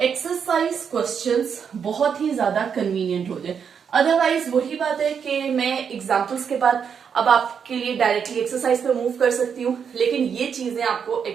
एक्सरसाइज क्वेश्चंस बहुत ही ज्यादा कन्वीनियंट हो जाए। अदरवाइज वही बात है कि मैं एग्जांपल्स के बाद अब आपके लिए डायरेक्टली एक्सरसाइज पे मूव कर सकती हूँ, लेकिन ये चीजें आपको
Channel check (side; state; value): left; quieter; 7.0 dB